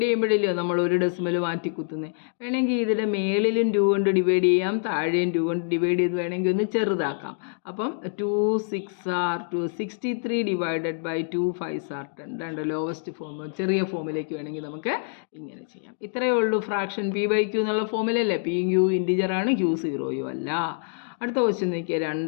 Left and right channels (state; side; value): silent; right; digital silence